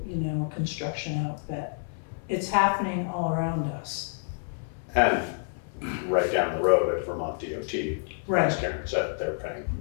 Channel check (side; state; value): right; silent; 59 dB below the other